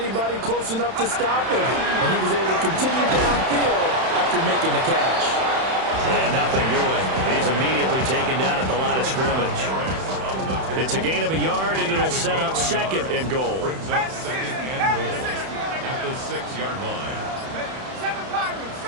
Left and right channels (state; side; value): late; left; 31 ms